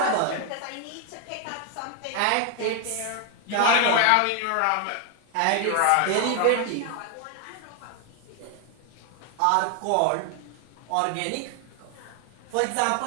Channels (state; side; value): different; both; correlation 0.00